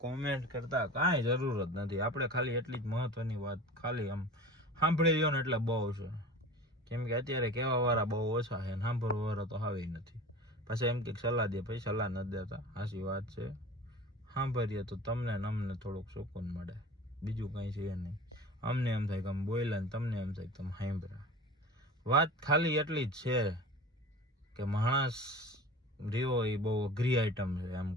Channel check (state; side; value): normal; both; correlation 0.37